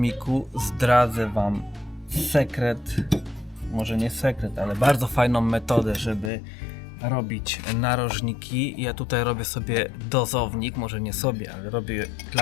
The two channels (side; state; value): right; drops out; at 6.3 s